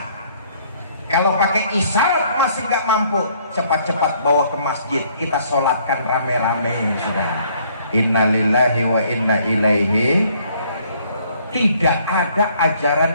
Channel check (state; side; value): inverted; both; correlation -0.63